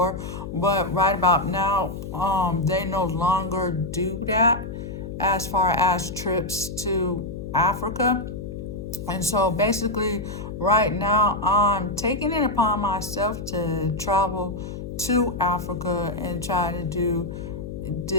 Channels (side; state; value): left; noise; hum, 8 dB below the sound